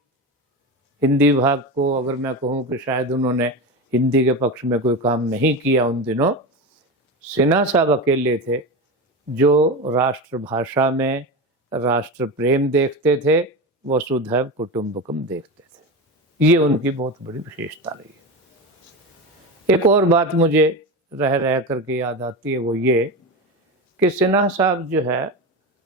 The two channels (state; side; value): normal; both; correlation 0.22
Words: हिंदी विभाग को अगर मैं कहूँ कि शायद उन्होंने हिंदी के पक्ष में कोई काम नहीं किया उन दिनों, सिन्हा साहब अकेले थे जो राष्ट्रभाषा में राष्ट्र प्रेम देखते थे वसुधैव कुटुंबकम देखते थे। ये उनकी बहुत बड़ी विशेषता रही है। एक और बात मुझे रह रह करके याद आती है, वो ये कि सिन्हा साहब जो है